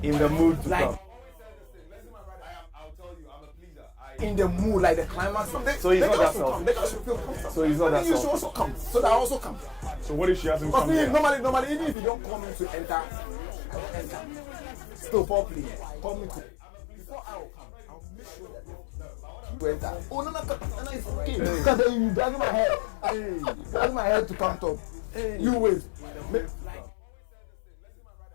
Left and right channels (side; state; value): right; drops out; at 12.0 s